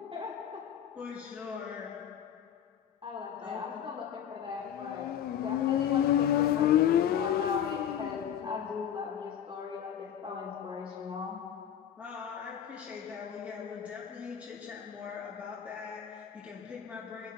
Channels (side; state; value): right; quieter; 9.3 dB